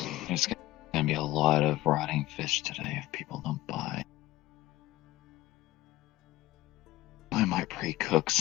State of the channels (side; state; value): right; quieter; 17.1 dB